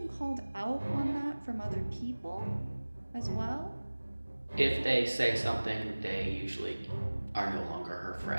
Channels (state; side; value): inverted; both; correlation -1.00